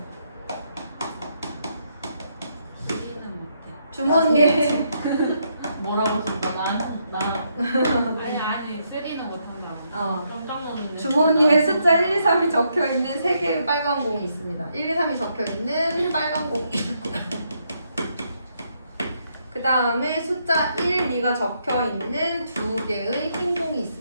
주머니에 뭐라고 했습니까? 아니 쓰리는 못한다. 깜짝 놀랐는데. 주머니에 숫자 1, 2, 3이 적혀 있는 3개의 빨간 공이 있습니다. 1, 2, 3이 적혀 있는 빨간 공이 있고 그 다음에 숫자 1, 2가 적혀 있는 2개의 흰 공이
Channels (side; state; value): both; inverted; correlation -0.76